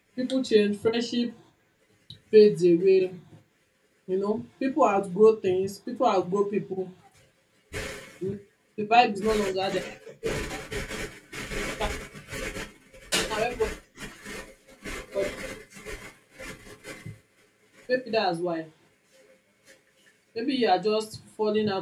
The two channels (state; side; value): identical; both; correlation 1.00